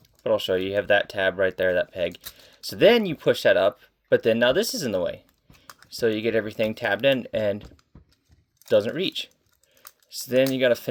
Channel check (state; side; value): identical; both; correlation 1.00